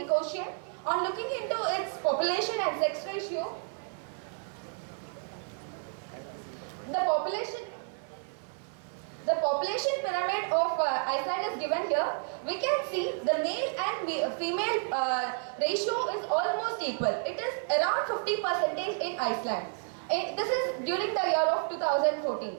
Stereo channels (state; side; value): silent; left; 57 dB below the other